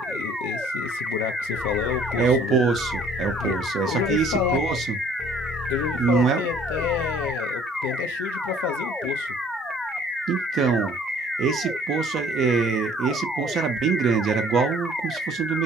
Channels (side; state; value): both; normal; correlation 0.56